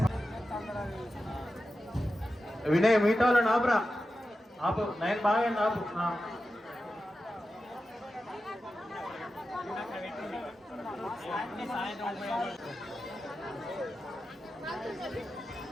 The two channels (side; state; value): both; normal; correlation 0.92